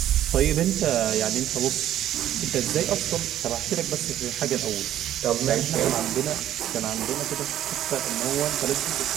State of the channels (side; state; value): left; quieter; 12.0 dB